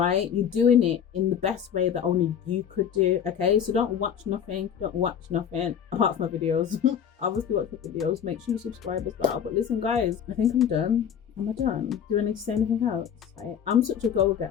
you're doing it in the best way that only you could do, okay? So don't watch nothing apart from my videos. Obviously watch my videos, make sure you subscribe as well. But listen guys, I think I'm done. Am I done? Do I need to say anything else? Right? I'm such a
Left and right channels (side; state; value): right; quieter; 8.4 dB